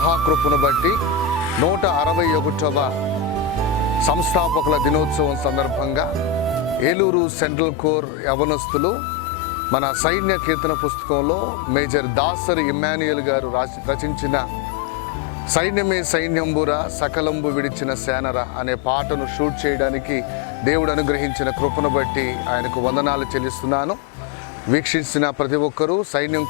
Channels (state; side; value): drops out; right; at 7.0 s